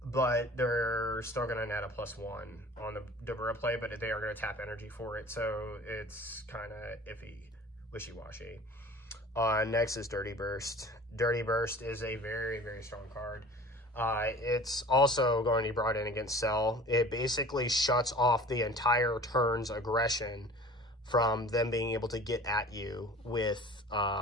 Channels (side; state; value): both; normal; correlation 0.43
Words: but they're still going to net a +1 on the Dabura play, but they are going to tap energy for it, so it's kind of iffy, wishy-washy. Next is Dirty Burst. Dirty Burst is a very, very strong card. It's also going to be brought in against Cell. It basically shuts off the entire turn's aggression from them being able to get at you with